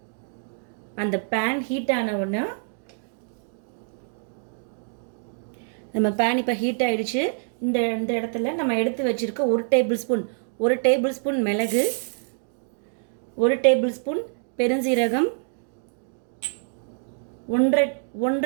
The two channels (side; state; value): left; silent; digital silence